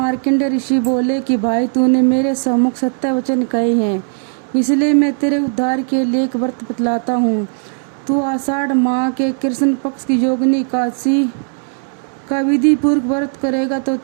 ऋषि बोले कि भाई, तूने मेरे सम्मुख सत्य वचन कहे हैं, इसलिए मैं तेरे उद्धार के लिए एक व्रत बतलाता हूँ। तू आषाढ़ माह के कृष्ण पक्ष की योगिनी एकादशी का विधि पूर्वक व्रत करेगा तो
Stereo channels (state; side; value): silent; left; 57 dB below the other